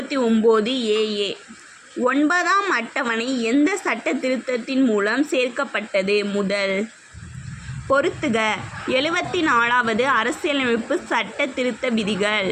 AA. 9ஆம் அட்டவணை எந்த சட்ட திருத்தத்தின் மூலம் சேர்க்கப்பட்டது? முதல். பொறுத்துக. 74வது அரசியலமைப்பு சட்ட திருத்த விதிகள்.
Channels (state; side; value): identical; both; correlation 1.00